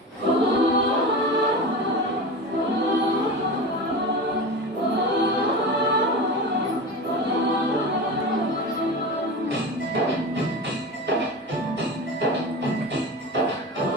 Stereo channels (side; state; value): both; normal; correlation 0.28